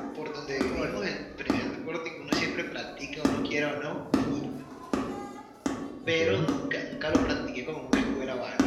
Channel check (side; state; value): both; identical; correlation 1.00